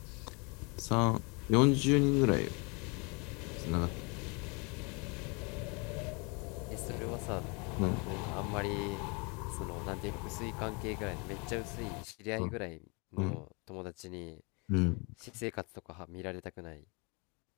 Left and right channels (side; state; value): right; quieter; 31.1 dB